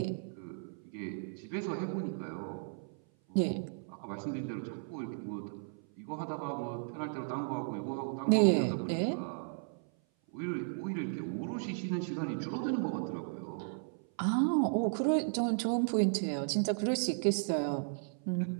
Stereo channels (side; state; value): left; silent; 54 dB below the other